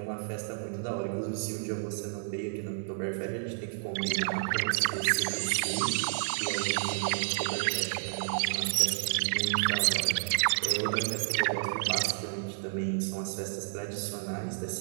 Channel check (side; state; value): left; silent; digital silence